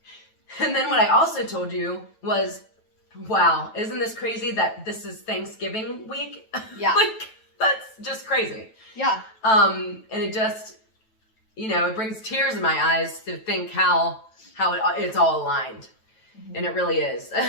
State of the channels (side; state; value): right; late; 9.1 ms